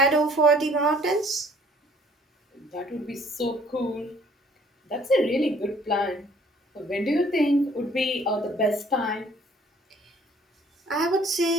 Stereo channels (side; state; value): both; normal; correlation 0.58